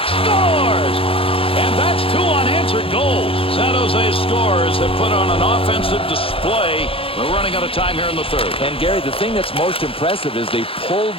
Scores! And that's 2 unanswered goals. San Jose's scorers have put on an offensive display. We're running out of time here in the third. And, Gary, the thing that's most impressive is they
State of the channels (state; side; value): late; right; 0.27 ms